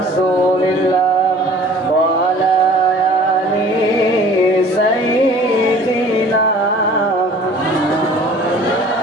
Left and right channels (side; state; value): both; normal; correlation 0.48